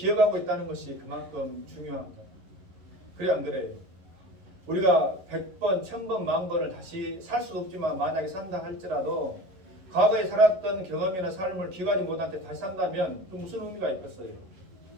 있다는 것이 그만큼 중요한 거예요. 그래 안 그래요? 우리가 100번, 1000번, 10,000번을 다시 살 수도 없지만 만약에 산다 할지라도 과거에 살았던 경험이나 삶을 기억하지 못한 채 다시 산다면 그 무슨 의미가 있겠어요?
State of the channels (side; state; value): left; late; 11 ms